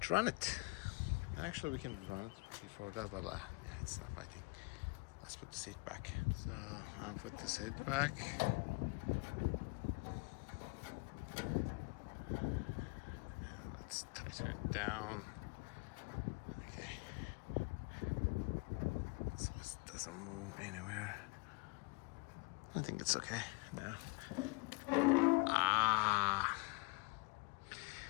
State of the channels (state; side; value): quieter; right; 29.0 dB